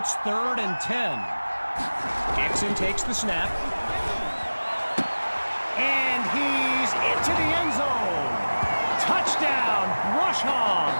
3rd and 10. Dixon takes the snap. And he's into the end zone. Touchdown, Brush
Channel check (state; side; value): inverted; both; correlation -1.00